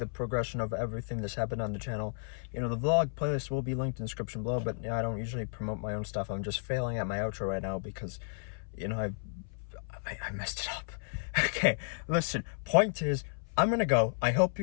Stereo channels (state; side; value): silent; right; 56 dB below the other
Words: progression of everything that's happened on the channel, the vlog playlist will be linked in the description below. But I don't usually promote my own stuff. I'm just failing at my outro right now because I messed it up. Okay, listen, point is, I'm gonna go. I hope